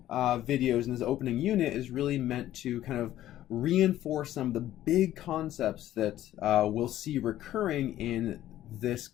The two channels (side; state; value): right; quieter; 13.3 dB